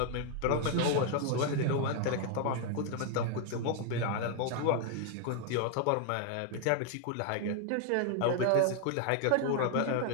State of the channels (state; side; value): different; both; correlation 0.00